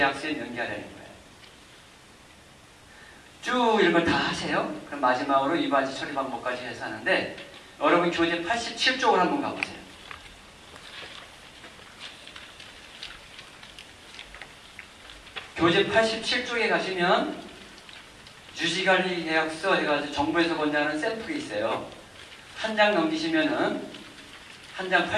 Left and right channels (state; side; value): identical; both; correlation 1.00